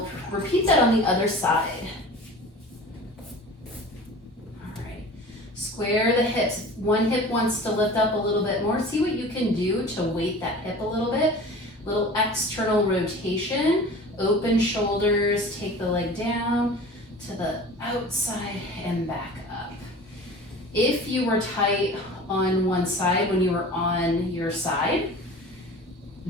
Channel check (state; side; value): normal; both; correlation 0.40